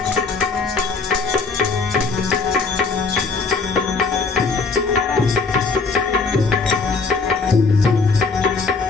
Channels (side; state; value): right; quieter; 4.4 dB